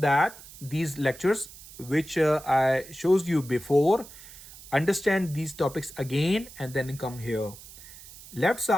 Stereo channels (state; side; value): noise; right; hiss, 18 dB below the sound